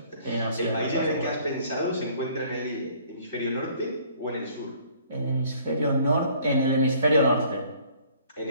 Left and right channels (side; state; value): both; inverted; correlation -0.57